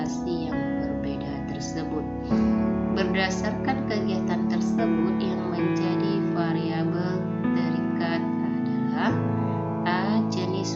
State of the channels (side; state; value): both; identical; correlation 1.00